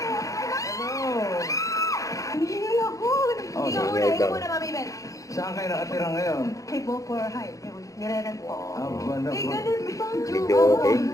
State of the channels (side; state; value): right; late; 0.16 ms